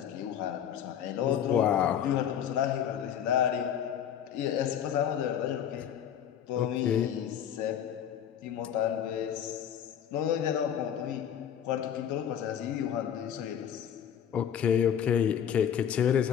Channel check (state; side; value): quieter; right; 9.2 dB